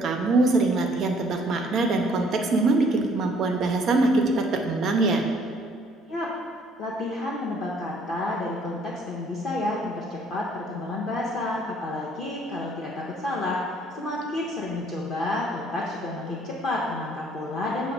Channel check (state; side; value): normal; both; correlation 0.61